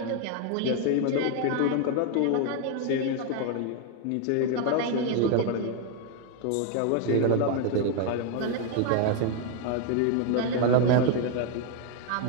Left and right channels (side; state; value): both; different; correlation 0.01